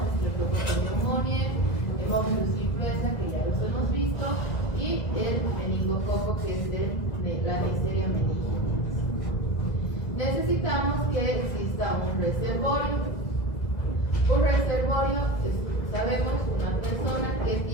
Streptococcus pneumoniae, Haemophilus influenza, que ya los hemos visto, y el meningococo, que es de la Neisseria meningitis. Necesitamos que exista un reservorio. Un reservorio, sabemos, una persona que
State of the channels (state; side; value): late; right; 1.8 ms